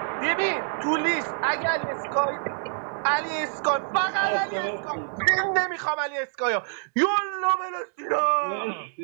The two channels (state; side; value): silent; left; 60 dB below the other